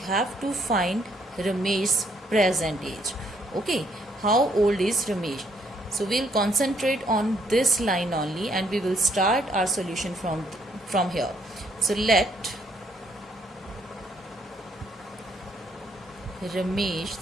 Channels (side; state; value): both; normal; correlation 0.70